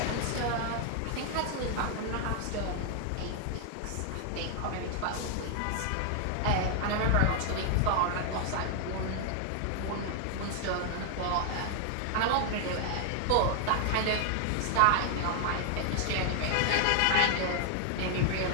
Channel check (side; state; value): both; different; correlation 0.00